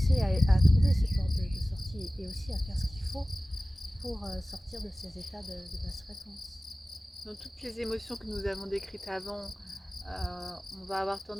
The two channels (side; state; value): both; normal; correlation 0.97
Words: à trouver ces portes de sortie et aussi à faire ce qu'il faut pour sortir de ces états de basse fréquence. Dans toutes les émotions que nous avons décrites avant, on va avoir